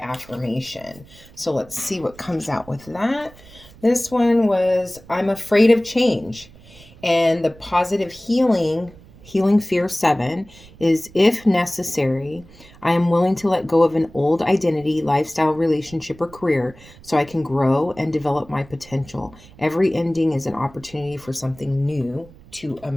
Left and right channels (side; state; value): right; noise; rumble, 22 dB below the sound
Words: So let's see what comes out with that. This one was I'm afraid of change. And the positive healing fear 7 is if necessary, I am willing to let go of an old identity, lifestyle, relationship, or career so I can grow and develop my potential. Every ending is an opportunity for something new to